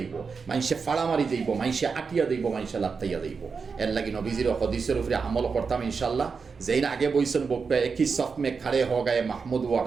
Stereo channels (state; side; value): quieter; left; 5.2 dB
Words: মানুষে ফাড়া মারি যাইব, মানুষে আটিয়া যাইব, মানুষে লাত্তাইয়া যাইব। এর লাগি নবীজির হদিসের উপরে আমল করতাম ইনশাল্লাহ। যেই না আগে বইছেন বকবে একই সফ মে খাড়ে হ গায়ে মাহমুদ ওয়া